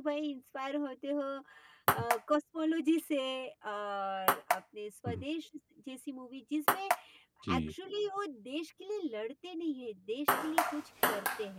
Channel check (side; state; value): both; identical; correlation 1.00